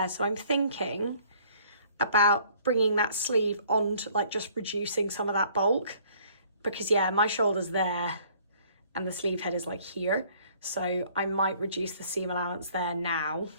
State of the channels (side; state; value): both; inverted; correlation -0.58